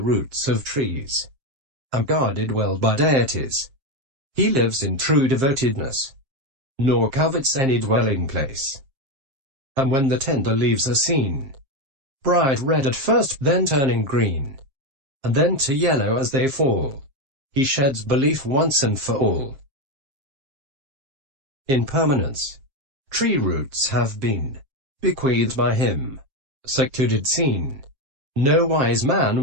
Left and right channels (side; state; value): left; late; 7.5 ms